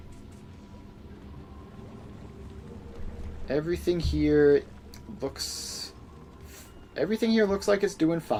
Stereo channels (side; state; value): both; identical; correlation 1.00